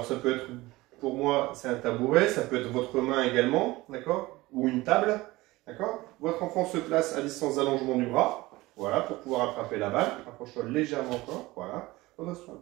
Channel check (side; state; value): left; quieter; 19.8 dB